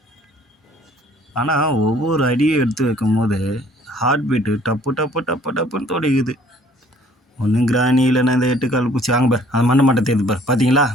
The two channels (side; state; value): both; normal; correlation 0.57